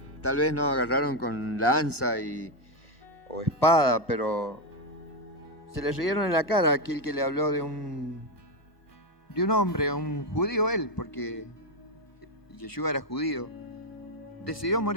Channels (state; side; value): late; right; 1.1 ms